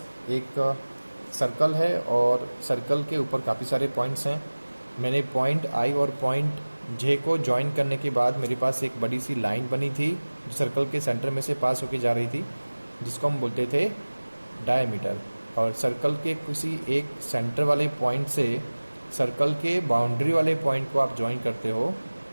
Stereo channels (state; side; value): inverted; both; correlation -1.00